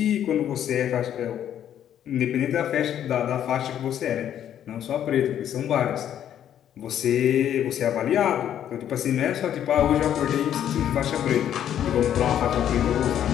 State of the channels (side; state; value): right; quieter; 10.3 dB